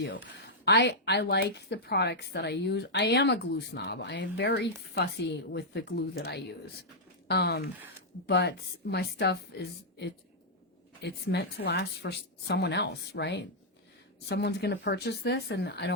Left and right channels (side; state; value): both; normal; correlation -0.06